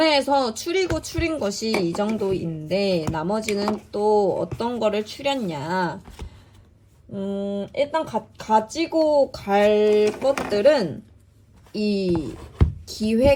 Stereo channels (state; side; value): identical; both; correlation 1.00